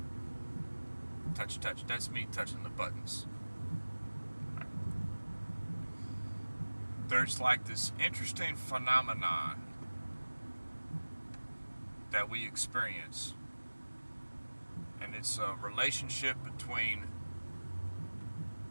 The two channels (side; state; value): both; inverted; correlation -1.00